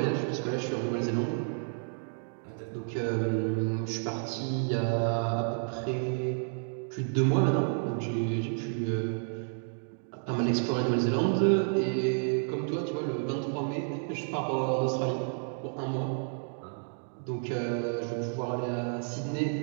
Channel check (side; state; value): left; silent; 57 dB below the other